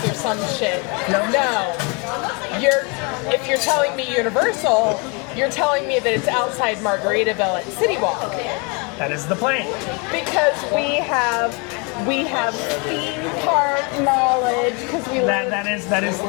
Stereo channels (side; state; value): right; quieter; 32.0 dB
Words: or some shit. No. If you're telling me Universal, you're telling me that it's outside Margaritaville at City Walk. That is the plane. Because we have theme park knowledge. Because we live